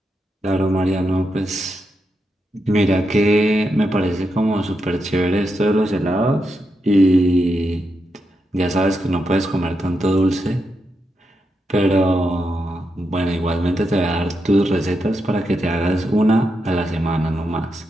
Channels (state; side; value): normal; both; correlation 0.84